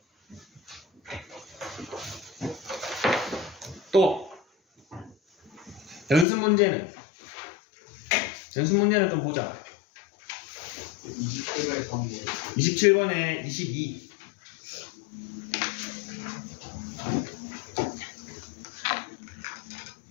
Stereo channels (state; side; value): drops out; right; at 6.2 s